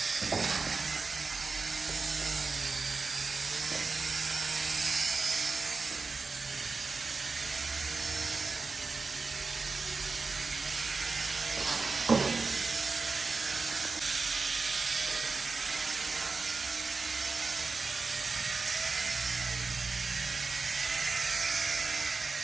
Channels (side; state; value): left; quieter; 4.3 dB